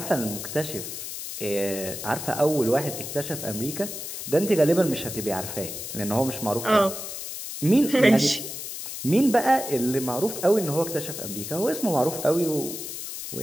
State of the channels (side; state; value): left; noise; hiss, 8 dB below the sound